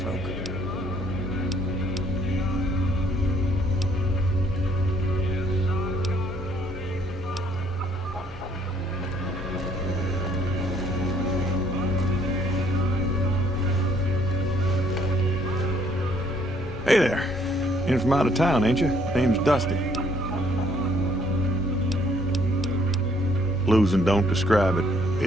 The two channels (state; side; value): normal; both; correlation 0.63